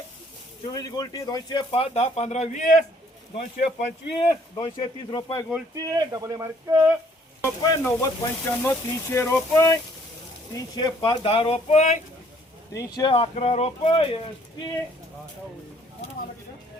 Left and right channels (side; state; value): both; normal; correlation 0.62